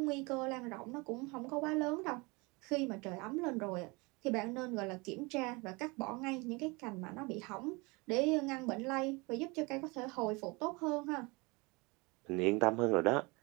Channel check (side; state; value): left; quieter; 26.5 dB